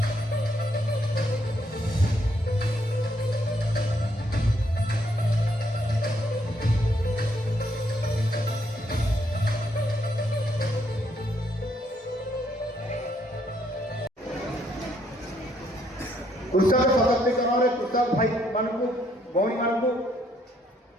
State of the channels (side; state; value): both; normal; correlation 0.72